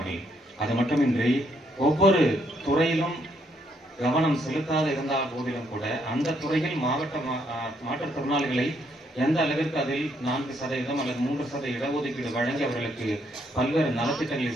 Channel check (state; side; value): normal; both; correlation 0.73